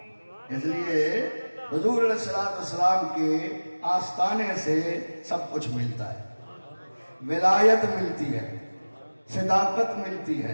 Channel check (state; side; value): inverted; both; correlation -1.00